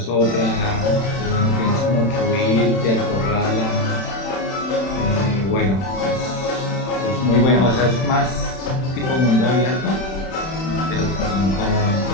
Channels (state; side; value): late; right; 31 ms